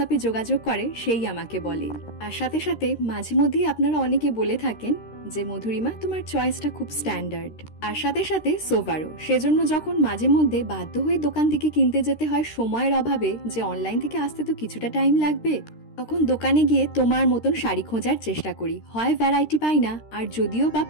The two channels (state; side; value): late; right; 13 ms